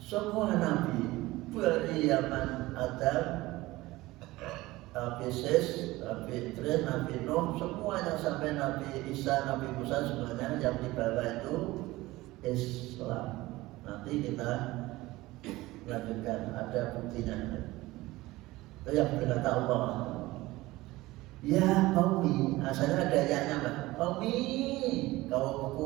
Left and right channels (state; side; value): quieter; left; 19.0 dB